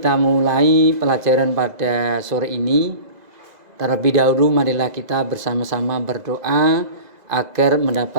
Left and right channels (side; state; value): left; late; 2.0 ms